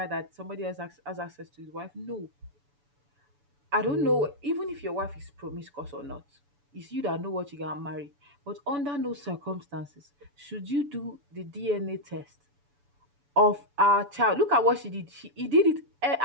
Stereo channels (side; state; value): left; late; 7.0 ms